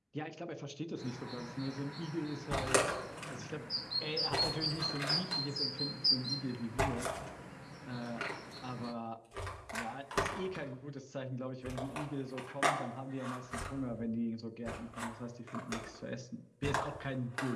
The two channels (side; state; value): both; identical; correlation 1.00